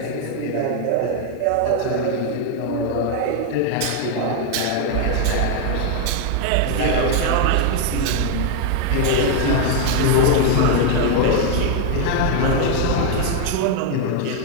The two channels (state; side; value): different; both; correlation 0.00